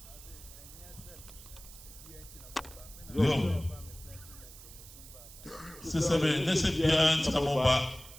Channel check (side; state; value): right; noise; hiss, 17 dB below the sound